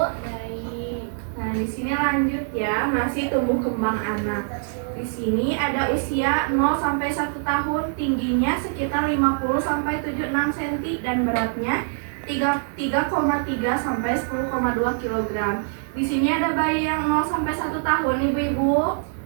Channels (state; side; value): silent; left; 63 dB below the other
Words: Baik. Nah di sini lanjut ya, masih tumbuh kembang anak. Di sini ada usia 0 sampai 1 tahun, tingginya sekitar 50 sampai 76 cm dan beratnya 3,3 sampai 10,2 kg. Di sini ada bayi yang 0 sampai 1 tahun ibu-ibu.